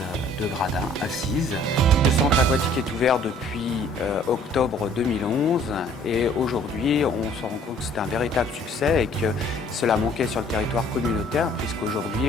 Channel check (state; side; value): normal; both; correlation 0.56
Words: de gradins assises. Le centre aquatique est ouvert depuis octobre 2011 et aujourd'hui on se rend compte que c'est un véritable succès et que cela manquait sur le territoire communautaire